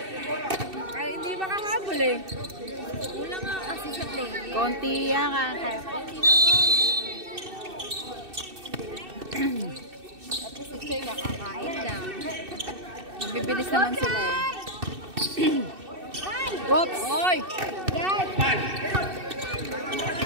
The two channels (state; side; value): late; left; 2.6 ms